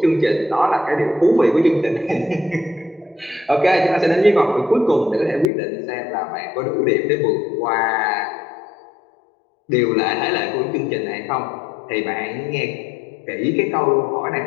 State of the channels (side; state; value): right; drops out; at 5.5 s